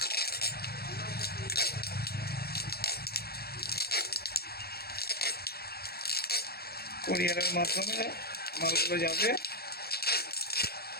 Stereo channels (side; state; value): right; late; 0.46 ms